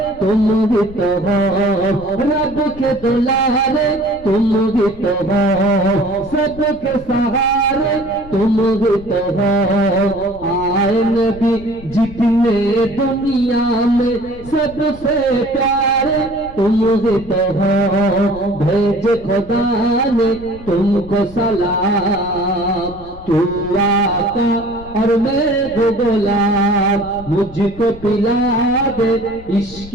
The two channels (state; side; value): noise; left; rumble, 17 dB below the sound